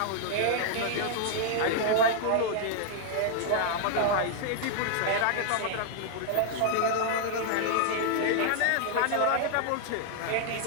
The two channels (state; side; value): different; both; correlation 0.00